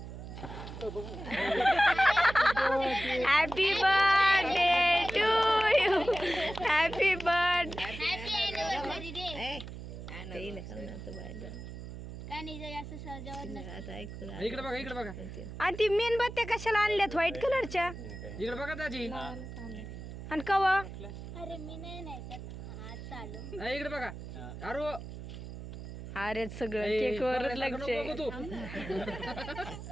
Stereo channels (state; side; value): noise; right; hum, 10 dB below the sound